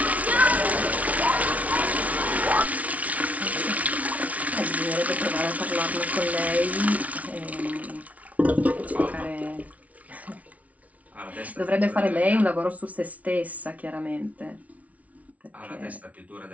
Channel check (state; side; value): late; left; 0.069 ms